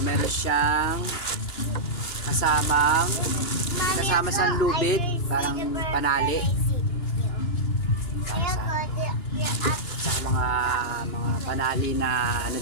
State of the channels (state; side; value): late; right; 2.9 ms